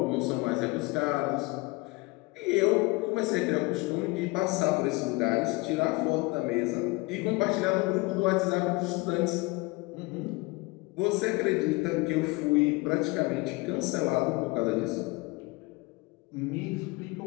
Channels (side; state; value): right; quieter; 24.3 dB